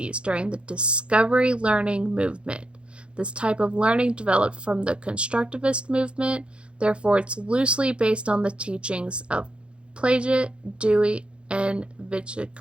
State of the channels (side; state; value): left; late; 0.057 ms